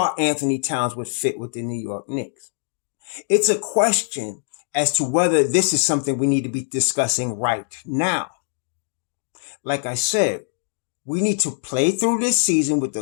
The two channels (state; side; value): silent; right; digital silence